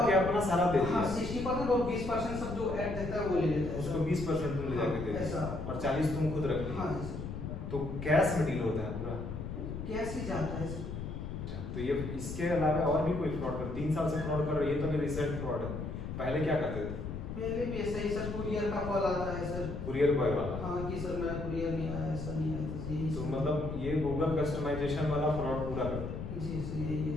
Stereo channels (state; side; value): noise; left; rumble, 6 dB below the sound